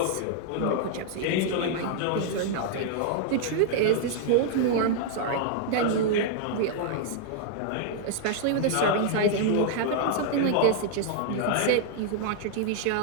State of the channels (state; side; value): different; both; correlation -0.01